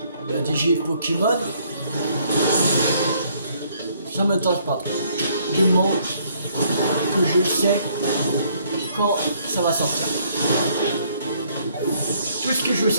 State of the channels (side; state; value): both; inverted; correlation -0.66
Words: la DG Pokémon, ça m'intéresse pas trop. Du moment que je sais quand ça va sortir. Tout ce que je veux